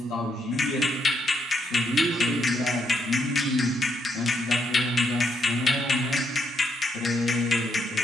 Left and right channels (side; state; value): both; normal; correlation 0.77